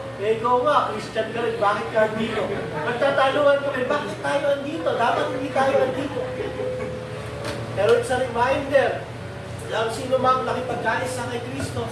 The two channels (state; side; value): identical; both; correlation 1.00